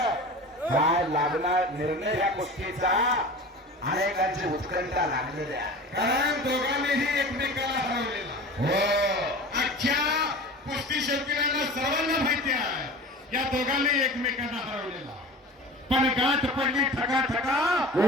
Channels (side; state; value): both; normal; correlation 0.36